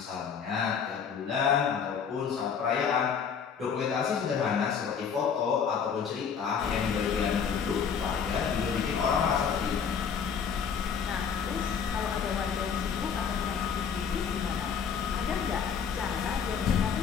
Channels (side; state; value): right; quieter; 6.8 dB